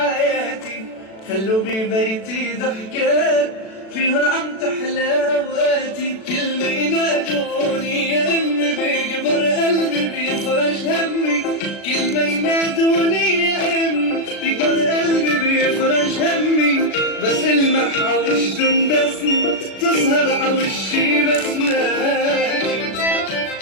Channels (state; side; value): late; right; 36 ms